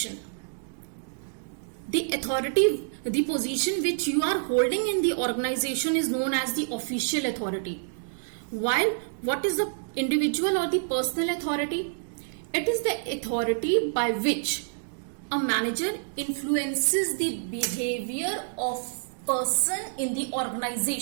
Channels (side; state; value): left; silent; digital silence